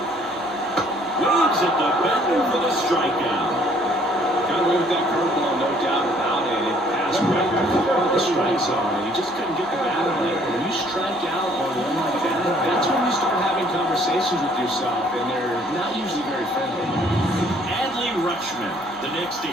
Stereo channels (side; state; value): both; normal; correlation 0.61